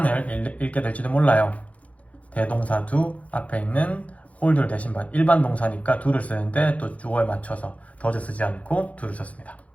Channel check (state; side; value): late; right; 0.066 ms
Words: 읽게 될지도 몰라요. 대동사 do 앞에 있는 홀드를 대신 받 일반 동사니까 do를 쓰는데 또 주어에 맞춰서 does 쓰지 않고 do를 썼습니다.